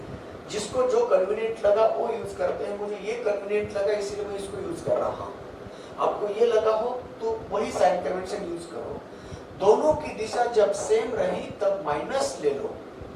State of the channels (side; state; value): both; identical; correlation 1.00